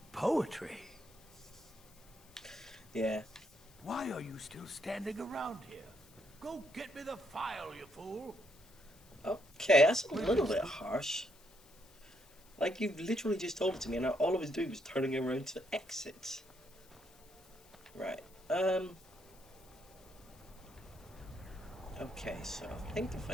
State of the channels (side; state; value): left; noise; hiss, 25 dB below the sound